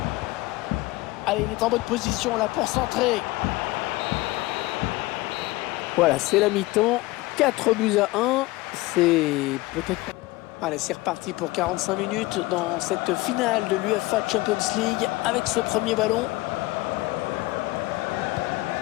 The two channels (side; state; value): right; quieter; 20.2 dB